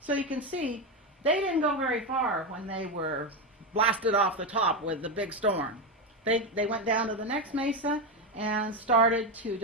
So you can see, they didn't go very far when they were blasted off the top with the big storm. They went down to the next mesa and started to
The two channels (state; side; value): normal; both; correlation 0.12